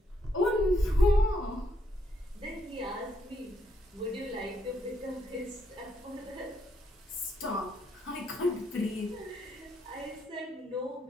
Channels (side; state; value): both; normal; correlation 0.76